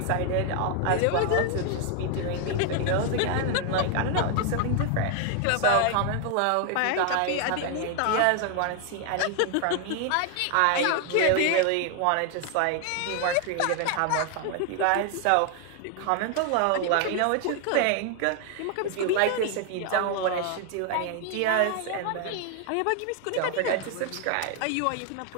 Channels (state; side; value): different; both; correlation 0.00